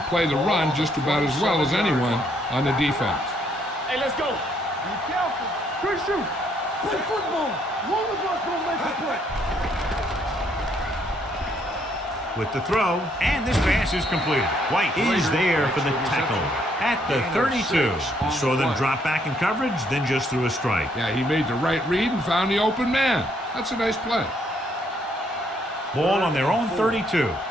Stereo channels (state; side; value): normal; both; correlation 0.70